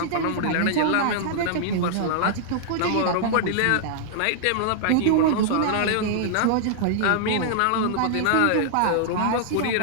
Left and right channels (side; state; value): both; different; correlation -0.01